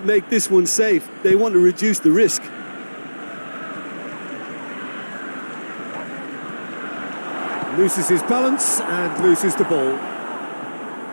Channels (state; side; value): inverted; both; correlation -1.00